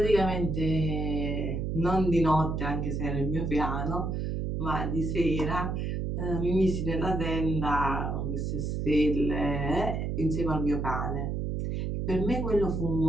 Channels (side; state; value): right; noise; hum, 2 dB below the sound